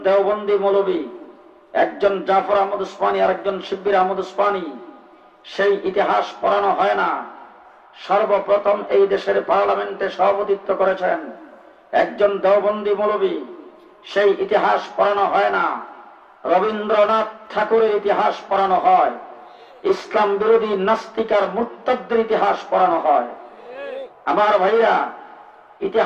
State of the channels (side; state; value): both; identical; correlation 1.00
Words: দেওবন্দি মৌলবী, একজন জাফর আহমদ উসমানী আর একজন শিব্বির আহমদ উসমানী, সেই ইতিহাস পড়ানো হয় না। সর্বপ্রথম এই দেশের পার্লামেন্টে সভাপতিত্ব করেছেন একজন দেওবন্দি মৌলবী, সেই ইতিহাস পড়ানো হয় না। রবীন্দ্রনাথ ঠাকুরের ইতিহাস পড়ানো হয়, ইসলাম বিরোধী নাস্তিক আর মুরতাদদের ইতিহাস পড়ানো হয়। আমার ভাইরা,